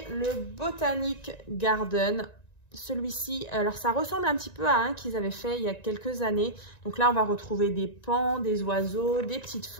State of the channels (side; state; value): right; late; 1.9 ms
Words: le Botanic Garden. Celui-ci, alors ça ressemble un petit peu à un qu'ils avaient fait il y a quelques années. Donc là, on va retrouver des pans, des oiseaux, des petites